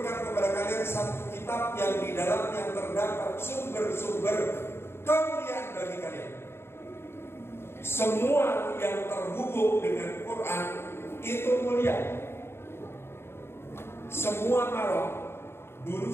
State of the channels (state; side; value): late; right; 0.12 ms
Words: kepada kalian satu kitab yang di dalamnya terdapat sumber-sumber kemuliaan bagi kalian. Semua yang terhubung dengan Quran itu mulia. Semua malam dulu